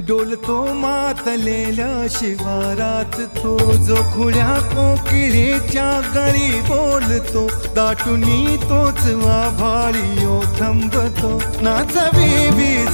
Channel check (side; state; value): both; inverted; correlation -1.00